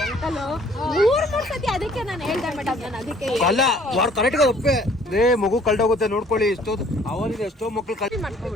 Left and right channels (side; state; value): both; normal; correlation 0.57